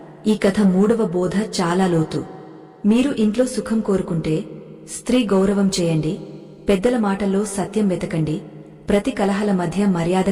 ఈ కథ మూడవ బోధ చాలా లోతు. మీరు ఇంట్లో సుఖం కోరుకుంటే స్త్రీ గౌరవం చేయండి, పెద్దల మాటల్లో సత్యం వెతకండి, ప్రతి కలహాల మధ్య మర్యాద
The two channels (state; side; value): identical; both; correlation 1.00